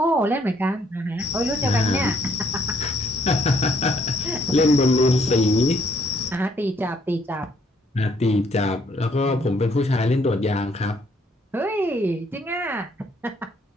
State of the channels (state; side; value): normal; both; correlation 0.67